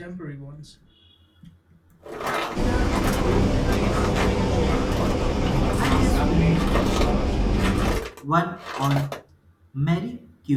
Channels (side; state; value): both; identical; correlation 1.00